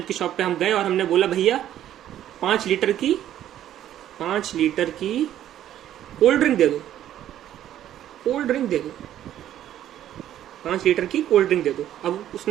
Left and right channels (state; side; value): quieter; left; 11.7 dB